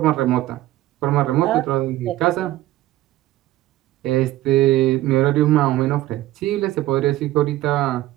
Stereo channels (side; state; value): left; quieter; 15.4 dB